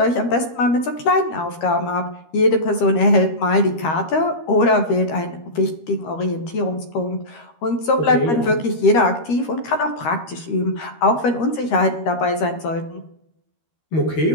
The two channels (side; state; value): right; late; 13 ms